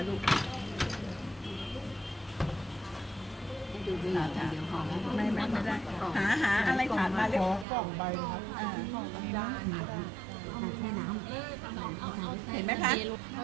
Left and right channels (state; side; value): drops out; left; at 7.7 s